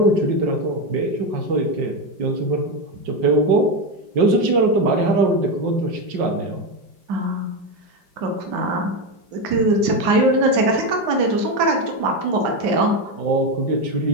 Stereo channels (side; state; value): left; late; 5.1 ms